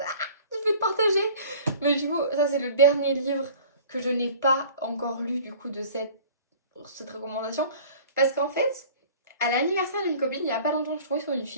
vais te partager. Mais du coup, ça c'est le dernier livre que je n'ai pas encore lu du coup de cette recommandation. Parce qu'en fait, à l'anniversaire d'une copine, il y a pas longtemps, je trouvais sur une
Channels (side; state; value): both; inverted; correlation -0.46